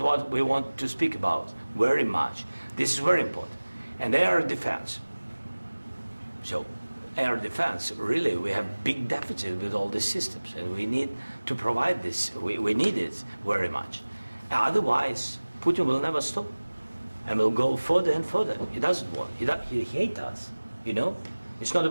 what we want to speak about very much. This is very important. And air defense. So air defense, really, we have big deficit with all these systems, and we need to provide this. We need it very much. Otherwise, Putin will never stop, and will go further and further. He doesn't want. He hates us, you know? It's not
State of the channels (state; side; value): inverted; both; correlation -1.00